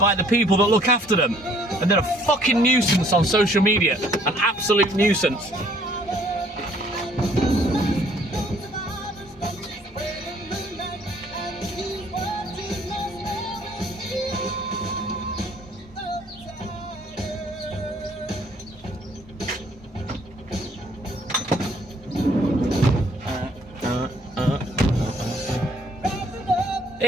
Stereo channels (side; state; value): both; normal; correlation 0.61